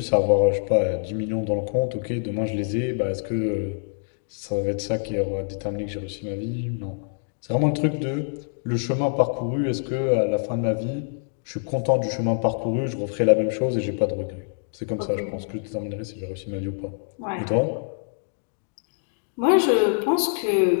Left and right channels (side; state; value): right; silent; digital silence